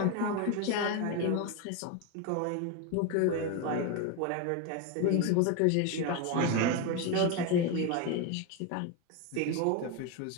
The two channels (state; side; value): different; both; correlation 0.02